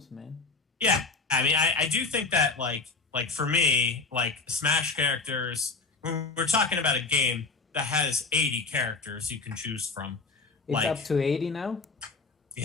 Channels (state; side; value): quieter; right; 4.3 dB